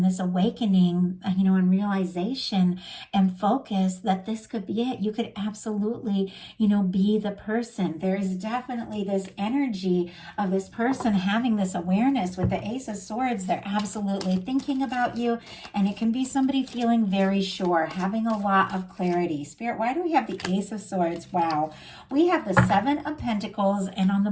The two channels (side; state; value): both; identical; correlation 1.00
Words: this awakening, and realization and focus that this could be it. You could absolutely, be the person. There is definitely this energy of this person having this awareness with the Ace of Swords. They're absolutely thinking about you, and it can be somebody feeling very sure, having a lot of clarity. Spirit, why do we have the Ace of Swords? Wow. We have the Seven of Pentacles, and on the